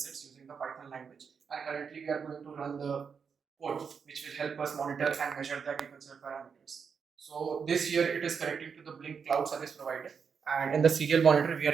using the Python language. And currently we are going to run the code which will help us monitor and measure the agricultural parameters. So this here it is connecting to the Blink Cloud Service provider, and in the serial monitor we are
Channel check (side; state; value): left; quieter; 6.3 dB